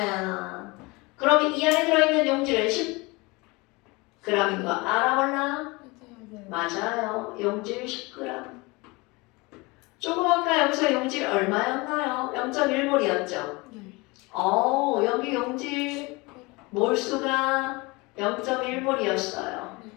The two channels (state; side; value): quieter; right; 25.0 dB